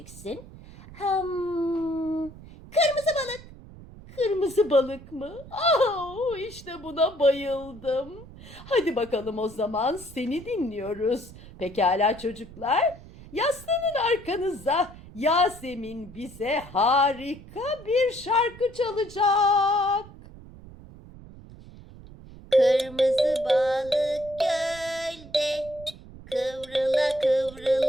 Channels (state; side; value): noise; right; rumble, 18 dB below the sound